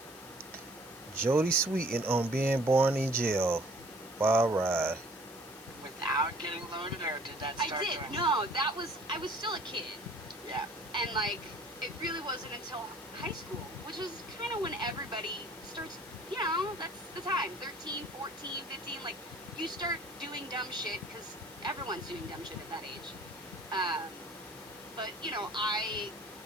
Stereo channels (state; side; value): noise; left; hiss, 18 dB below the sound